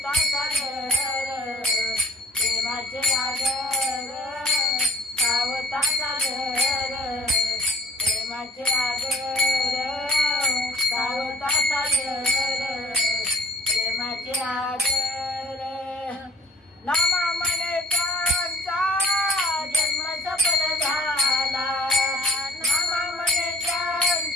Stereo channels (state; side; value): normal; both; correlation 0.52